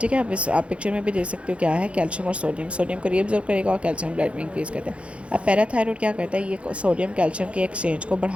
ठीक है। आप पिक्चर में भी देख सकते हो क्या है, कैल्शियम और सोडियम। सोडियम को रीअब्जॉर्ब करेगा और कैल्शियम ब्लड में इंक्रीज़ करता है। अब पैराथायरॉयड क्या करता है, ये सोडियम कैल्शियम के एक्सचेंज को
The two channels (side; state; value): left; late; 0.061 ms